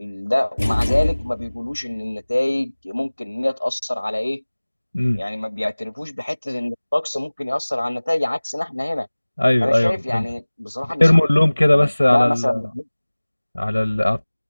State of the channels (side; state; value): both; inverted; correlation -1.00